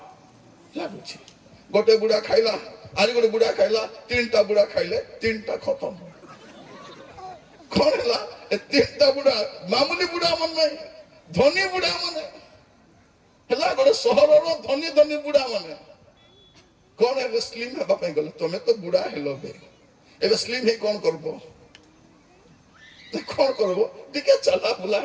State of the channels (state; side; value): identical; both; correlation 1.00